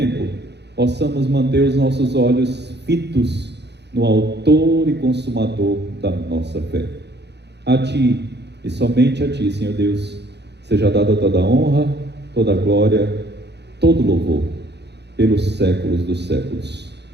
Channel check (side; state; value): left; late; 0.49 ms